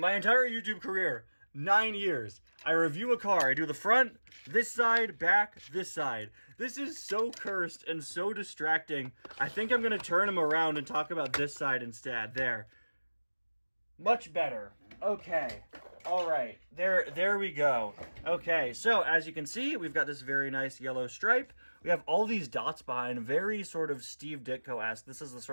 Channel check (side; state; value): both; inverted; correlation -1.00